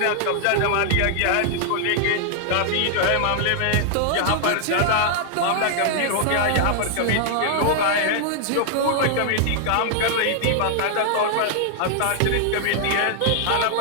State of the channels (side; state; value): both; different; correlation 0.00